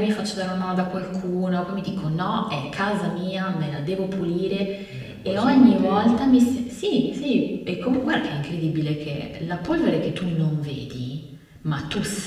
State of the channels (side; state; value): both; identical; correlation 1.00